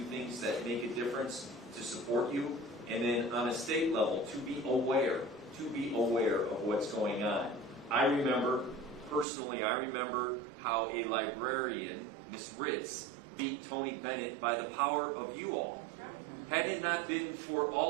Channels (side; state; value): left; drops out; at 9.2 s